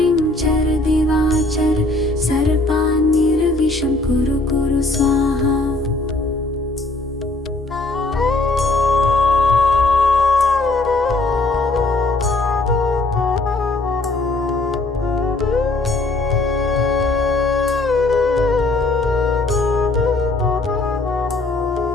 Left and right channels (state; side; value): quieter; right; 3.0 dB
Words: चर दिवाचर सर्पान्निर्विषं कुरु कुरु स्वाहा